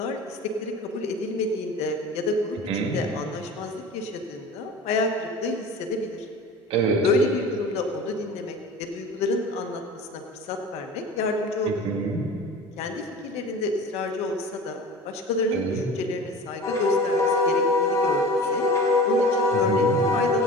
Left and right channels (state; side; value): normal; both; correlation 0.37